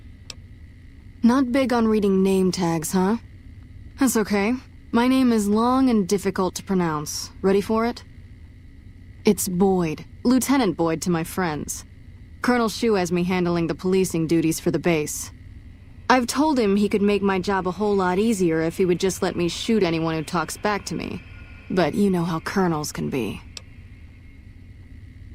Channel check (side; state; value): both; identical; correlation 1.00